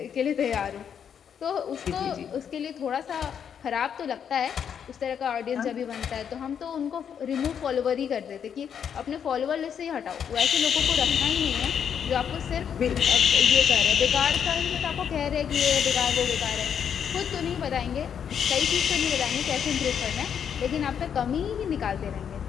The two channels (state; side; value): quieter; right; 8.0 dB